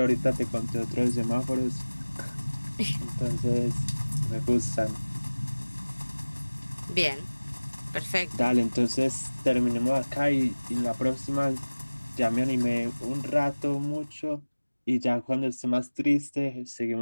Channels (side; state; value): both; inverted; correlation -1.00